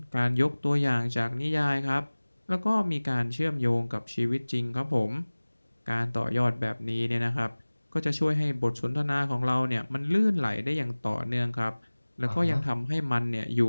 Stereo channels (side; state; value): both; inverted; correlation -1.00